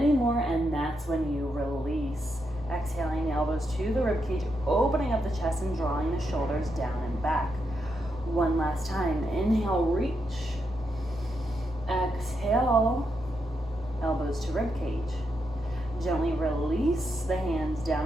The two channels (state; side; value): normal; both; correlation 0.82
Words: and that's when you release. Exhaling, elbows to the ribcage, opening up the chest and drawing the shoulders down and back. One last time. Inhale, reach. Exhale, elbows to ribcage. Gently release the hands down